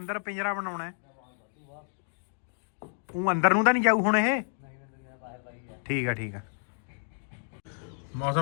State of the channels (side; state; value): right; silent; digital silence